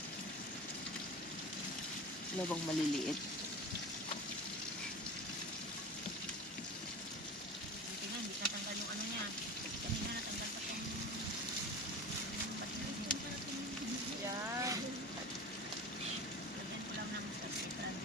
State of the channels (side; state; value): both; normal; correlation 0.33